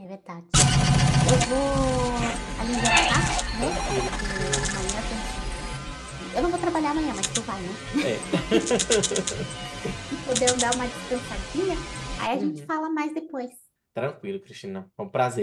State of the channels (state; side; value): identical; both; correlation 1.00